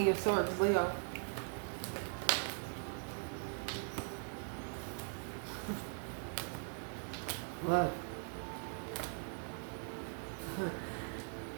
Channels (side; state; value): left; silent; 51 dB below the other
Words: of Swords? Leo. Look.